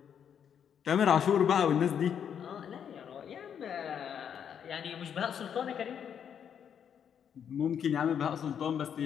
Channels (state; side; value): quieter; right; 8.3 dB